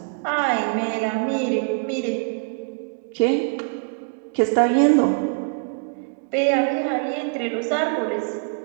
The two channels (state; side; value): silent; left; 63 dB below the other